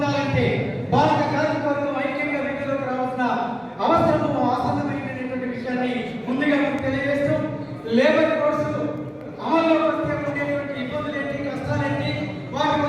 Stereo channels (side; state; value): both; identical; correlation 1.00